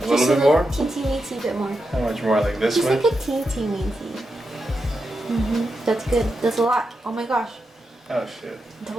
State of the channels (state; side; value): normal; both; correlation 0.87